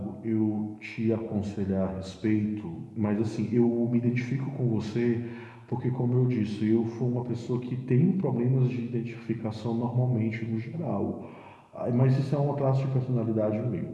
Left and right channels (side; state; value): both; identical; correlation 1.00